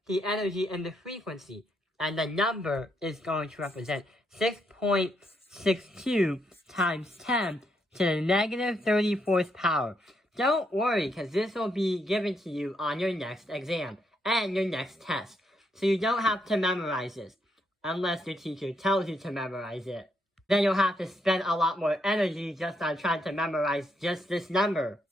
the energy and the frequency, and the number is going to represent 6.62 times 10 to the negative 34th power. Don't worry, because this will be given to you on your next exam and your next test. So you don't have to memorize this, unless your teacher tells you to memorize it. Then you'll have to spend a lot more energy just on trying to memorize just this number.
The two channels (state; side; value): normal; both; correlation 0.77